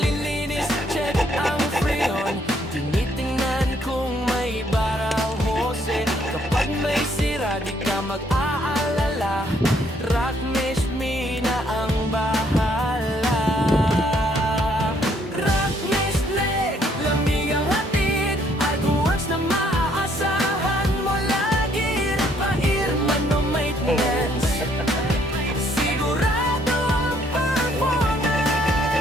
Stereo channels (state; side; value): normal; both; correlation 0.67